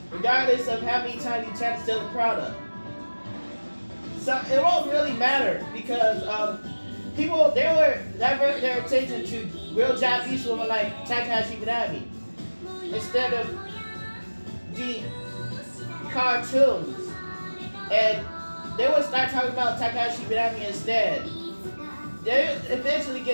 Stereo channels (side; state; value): both; inverted; correlation -1.00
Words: regardless of how many times you try to steal the product. So it won't really matter because people they were divert their attention to real Japanese women like Takahashi Minami instead of the cartoons, and they would start talking about Takahashi Minami instead. They eventually